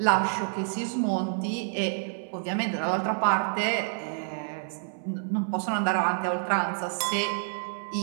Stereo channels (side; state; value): left; silent; 59 dB below the other